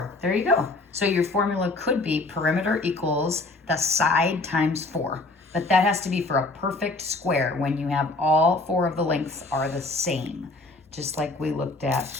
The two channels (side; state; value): right; quieter; 3.1 dB